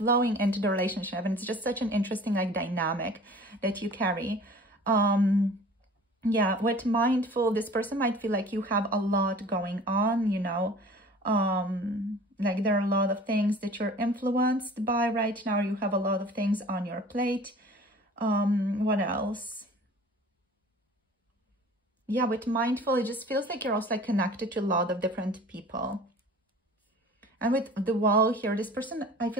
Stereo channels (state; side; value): normal; both; correlation 0.45